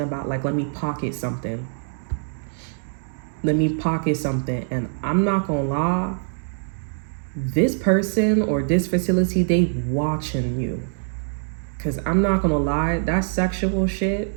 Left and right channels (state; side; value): silent; left; digital silence